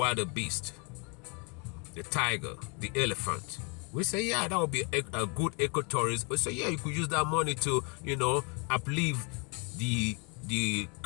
beast, the tiger, the elephant. We say, yeah, that would be a good ecotourism. We say, yeah, you could use that money to, uplift the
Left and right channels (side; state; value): right; quieter; 33.6 dB